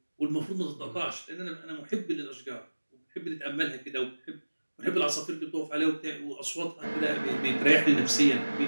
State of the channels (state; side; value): inverted; both; correlation -1.00